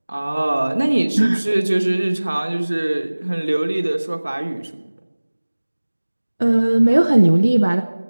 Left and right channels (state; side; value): inverted; both; correlation -1.00